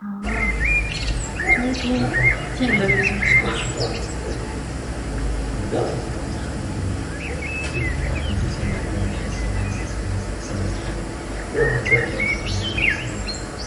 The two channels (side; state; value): both; identical; correlation 1.00